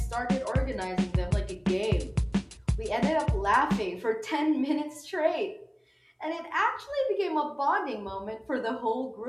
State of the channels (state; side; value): identical; both; correlation 1.00